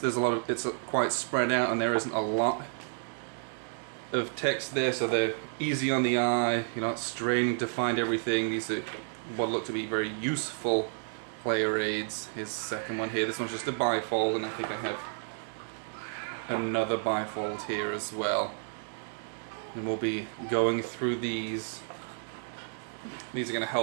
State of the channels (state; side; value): silent; left; digital silence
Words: a lot of, it's quite spread out, and there isn't a lot of text there, so they're easy on the eye. You're not straining to find everything. These are what look to be very useful player aids. Here's the second one here. This one's just a bifold, and I think I have another bifold here as well. And we'll be going through these. These are going to